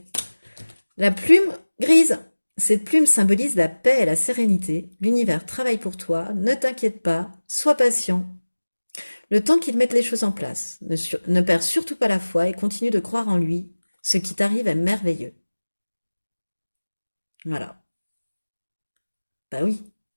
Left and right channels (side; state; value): both; inverted; correlation -1.00